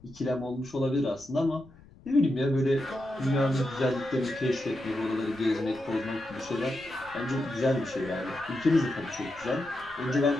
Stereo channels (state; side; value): noise; left; rumble, 24 dB below the sound